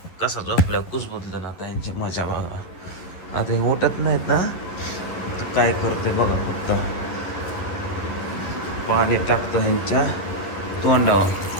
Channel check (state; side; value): late; right; 11 ms